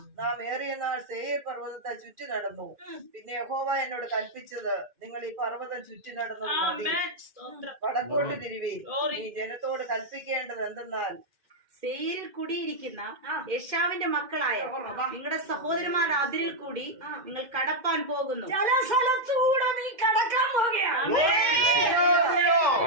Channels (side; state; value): left; late; 2.5 ms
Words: നാം ഏറിയ നാൾ സേയീർ പർവ്വതത്തെ ചുറ്റി നടന്നു. പിന്നെ യഹോവ എന്നോട് കൽപ്പിച്ചത്, നിങ്ങൾ ഈ പർവ്വതം ചുറ്റി നടന്നു മതി, വടക്കോട്ട് തിരിവീൻ. ഈ ജനത്തോട് കൽപ്പിക്കേണ്ടത് എന്തെന്നാൽ, സേയിരിൽ കുടിയിരിക്കുന്ന യേശാവിന്റെ മക്കളായ നിങ്ങളുടെ സഹോദരന്മാർ അതിരിൽ കൂടി നിങ്ങൾ കടപ്പാൻ പോകുന്നു. ചില സ്ഥലത്തൂടെ നീ കടക്കാൻ പോകുകയാണ്.